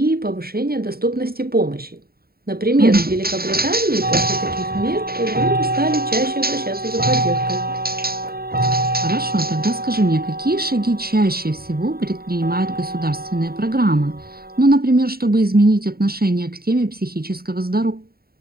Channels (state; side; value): late; left; 0.44 ms